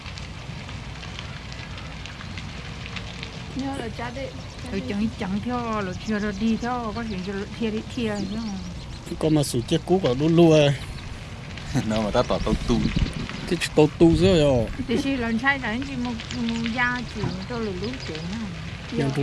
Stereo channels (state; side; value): identical; both; correlation 1.00